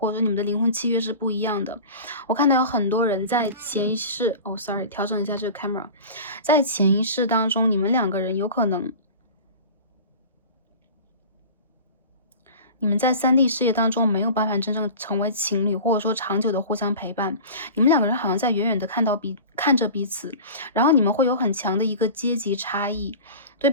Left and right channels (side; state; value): both; inverted; correlation -0.36